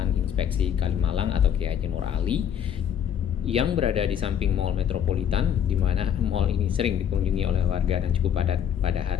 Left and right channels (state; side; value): quieter; right; 9.1 dB